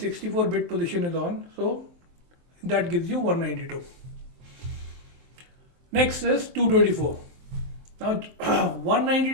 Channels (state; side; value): late; left; 23 ms